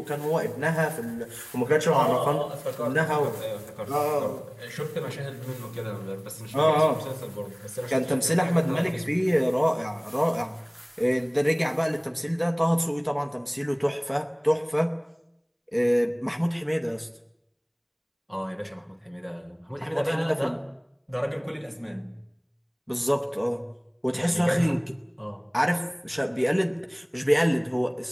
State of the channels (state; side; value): identical; both; correlation 1.00